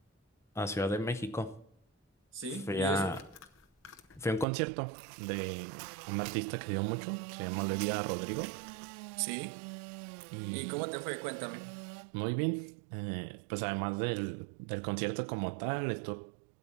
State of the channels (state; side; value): drops out; left; at 4.5 s